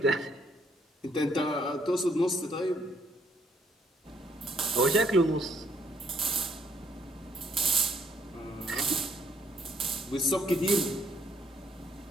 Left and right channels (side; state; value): both; normal; correlation 0.68